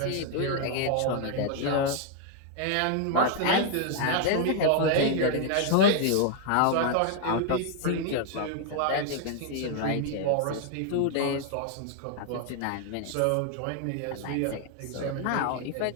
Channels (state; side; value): different; both; correlation 0.00